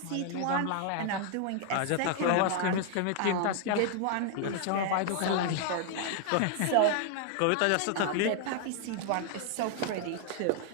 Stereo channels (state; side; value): different; both; correlation 0.00